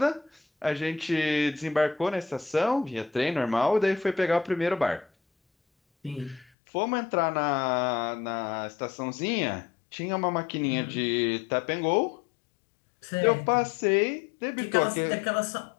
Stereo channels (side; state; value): right; drops out; at 6.5 s